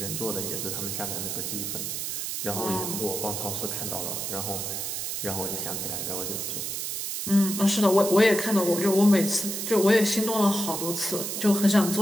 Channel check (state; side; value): noise; right; hiss, 3 dB below the sound